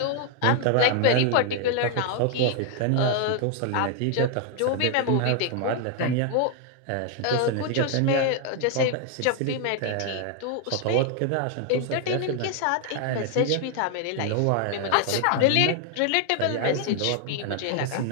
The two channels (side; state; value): both; different; correlation 0.00